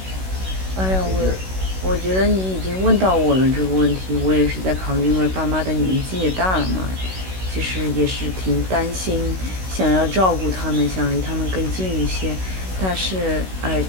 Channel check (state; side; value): late; left; 16 ms